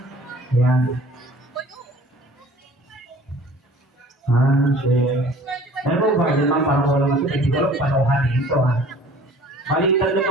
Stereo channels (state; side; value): normal; both; correlation 0.49